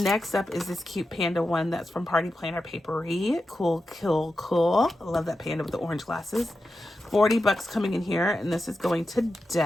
up is this cute panda one that's from Party Planner Papery. Cool. I love that panda with the orange glasses. 40 bucks coming in here, and this is going to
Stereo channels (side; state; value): both; normal; correlation 0.90